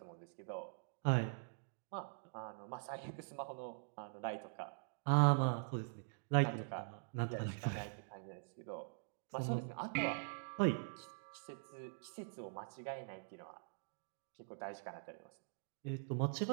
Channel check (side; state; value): left; silent; digital silence